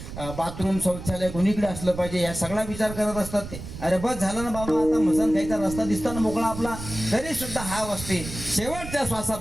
बाथरूम शौचालय कोणीकडे असलं पाहिजे, या सगळा विचार करत असतात ते. अरे बस झालं ना बाबा, आता मसान खायचा रस्ता दिसताना मोकळा आपला, तरी सुद्धा हाव असते, शेवटच्या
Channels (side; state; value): right; noise; rumble, 10 dB below the sound